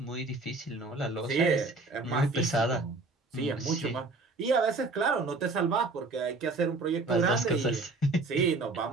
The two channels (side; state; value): left; quieter; 3.5 dB